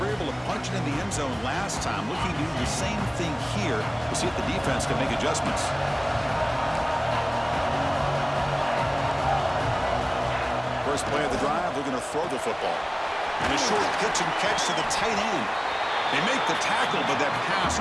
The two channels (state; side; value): identical; both; correlation 1.00